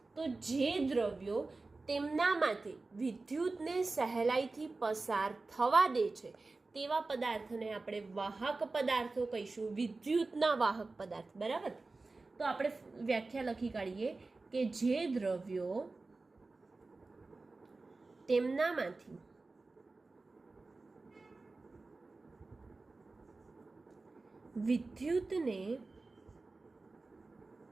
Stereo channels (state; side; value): quieter; left; 3.5 dB